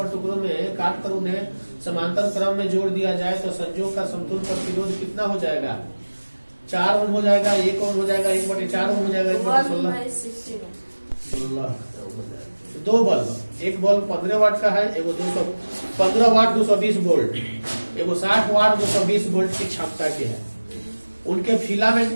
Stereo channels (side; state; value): both; inverted; correlation -1.00